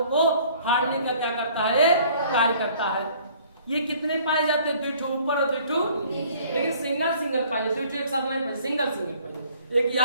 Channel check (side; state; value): both; inverted; correlation -0.56